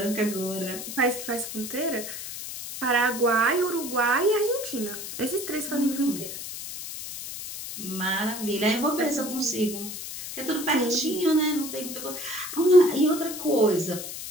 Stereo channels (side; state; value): left; noise; hiss, 8 dB below the sound